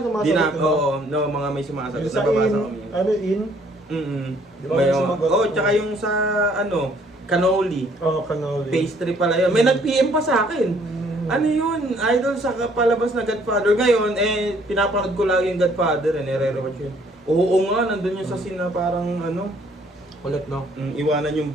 di na, diba? oo, no, mga may sumasagot. Yung sa Nababasa in, kami. ano in? Di ba may sumagot? tsaka yung sa ano, cannoli. Cannoli. Pastry pala yun. May nag-PM pa sa akin. Ano yun? Idol sa palabas na Godfather. Ngayon, pinapanood ko lagi yung Godfather. Nire-rewatch yun. Oo nga, nandun yung sa scene na parang ano, Ulit, no? iwanan yung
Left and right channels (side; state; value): both; normal; correlation 0.62